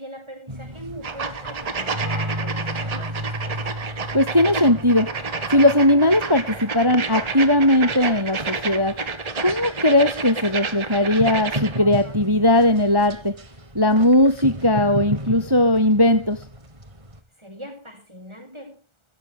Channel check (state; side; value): late; left; 1.4 ms